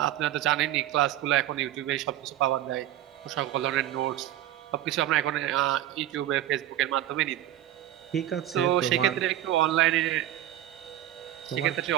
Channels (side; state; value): left; quieter; 12.9 dB